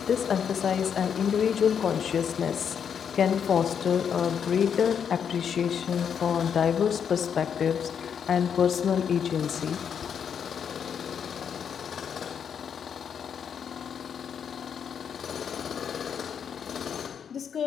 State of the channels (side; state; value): right; quieter; 7.6 dB